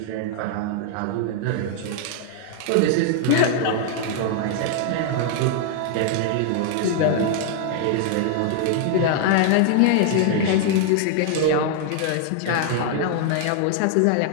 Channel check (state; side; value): different; both; correlation 0.00